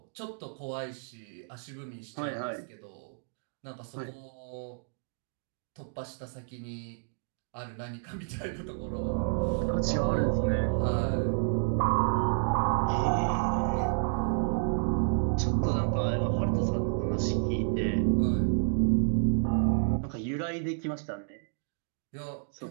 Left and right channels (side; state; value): left; silent; digital silence